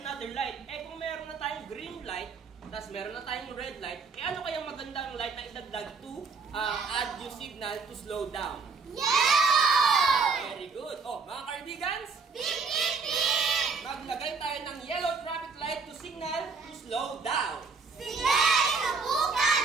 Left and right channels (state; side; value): quieter; left; 4.7 dB